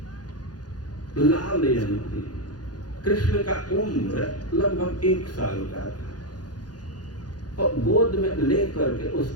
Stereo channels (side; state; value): right; late; 0.69 ms